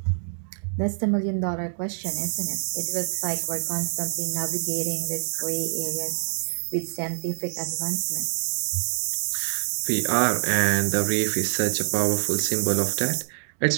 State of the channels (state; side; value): silent; left; digital silence